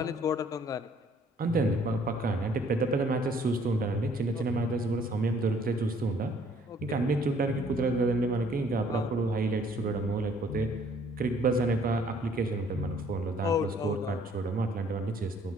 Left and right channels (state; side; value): normal; both; correlation 0.60